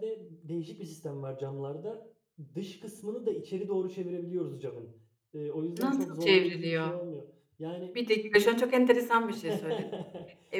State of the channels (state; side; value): identical; both; correlation 1.00